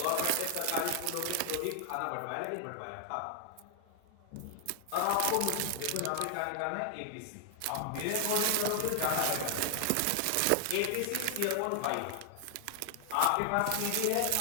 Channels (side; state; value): both; different; correlation 0.00